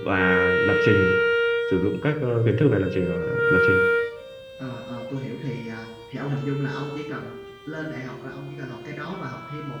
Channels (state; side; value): identical; both; correlation 1.00